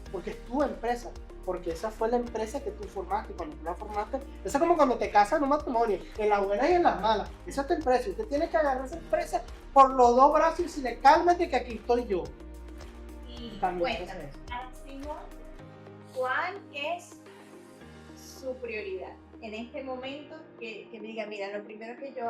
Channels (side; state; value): both; identical; correlation 1.00